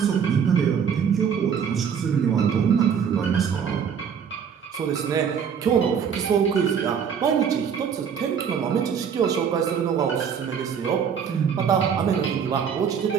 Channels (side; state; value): left; quieter; 7.3 dB